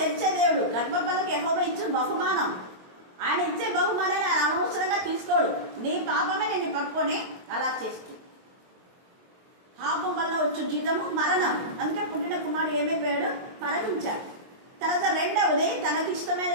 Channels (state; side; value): late; left; 22 ms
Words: తెరిచే దేవుడు. గర్భఫలకి యెహోవా ఇచ్చిన బహుమానం. ఆయన ఇచ్చే బహుమానాన్ని ఆయన అనవసరంగా తీసుకోడు. నీ పాపమే నిన్ను పట్టుకొని అలా చేస్తూ, పాపం వల్ల వచ్చు జీతము మరణం. అందుకే పుట్టిన కుమారుడు ఏమైపోయాడు? మరణించాడు. తర్వాత రెండవది,